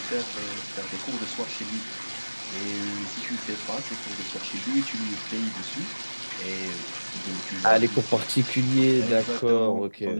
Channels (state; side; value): inverted; both; correlation -1.00